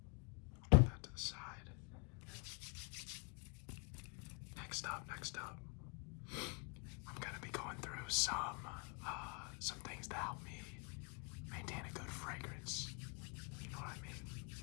I'll put that to the side. Next up, I'm gonna be going through some things that help me maintain a good fragrance. You know what I mean?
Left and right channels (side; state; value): right; quieter; 33.8 dB